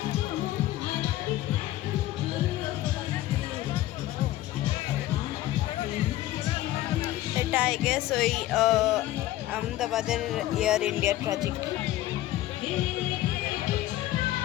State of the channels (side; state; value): right; quieter; 15.2 dB